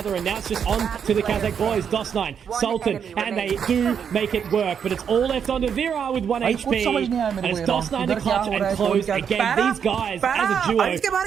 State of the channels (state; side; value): quieter; left; 7.5 dB